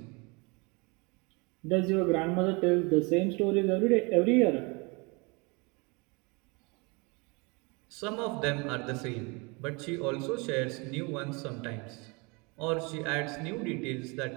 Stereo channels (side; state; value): left; quieter; 28.9 dB